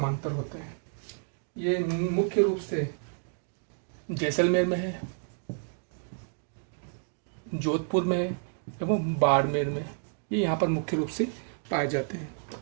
होते हैं। ये मुख्य रूप से जैसलमेर में है, जोधपुर में है एवं बाड़मेर में। ये यहाँ पर मुख्य रूप से पाए जाते हैं।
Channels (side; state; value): left; silent; 58 dB below the other